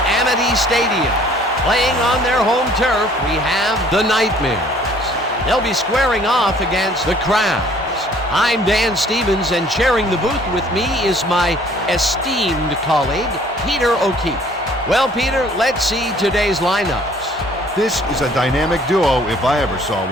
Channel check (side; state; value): both; normal; correlation 0.57